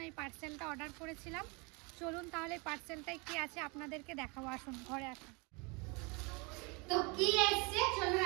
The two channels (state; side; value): quieter; left; 30.0 dB